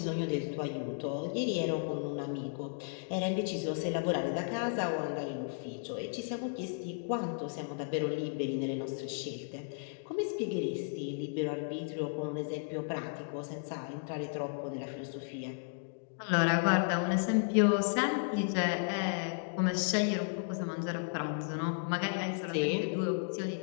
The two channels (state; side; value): silent; right; digital silence